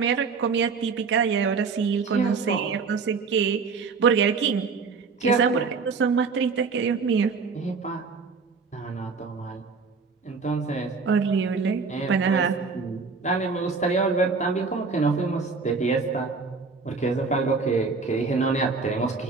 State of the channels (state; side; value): quieter; left; 4.9 dB